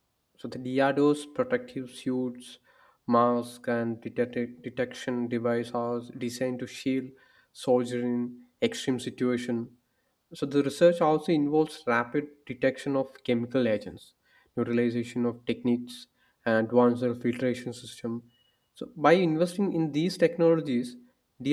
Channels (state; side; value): identical; both; correlation 1.00